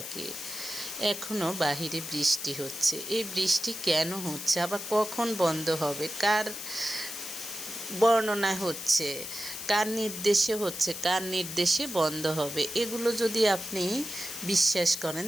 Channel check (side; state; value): left; noise; hiss, 8 dB below the sound